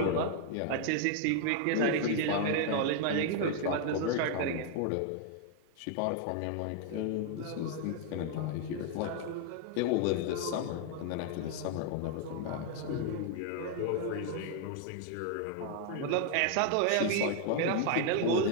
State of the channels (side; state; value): both; different; correlation 0.00